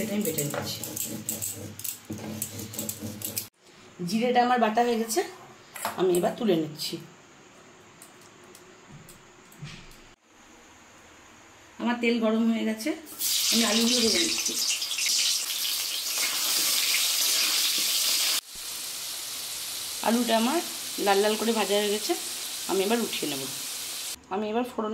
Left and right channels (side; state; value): both; identical; correlation 1.00